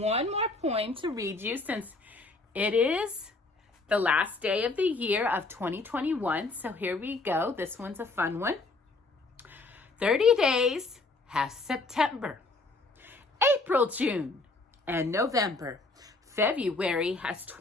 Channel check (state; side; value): quieter; right; 3.4 dB